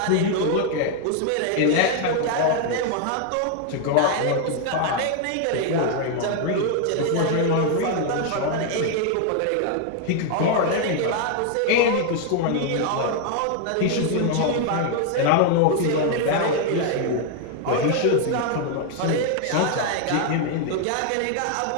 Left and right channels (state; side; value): different; both; correlation 0.00